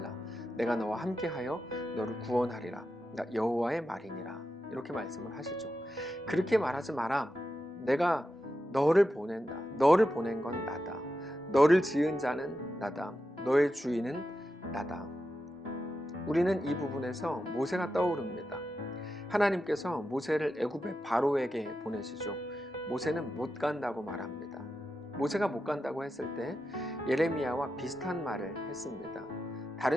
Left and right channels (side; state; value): both; normal; correlation 0.89